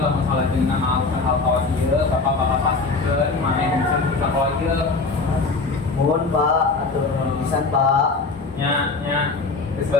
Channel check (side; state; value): right; quieter; 3.9 dB